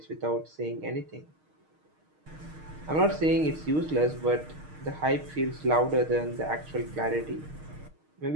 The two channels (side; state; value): left; late; 6.5 ms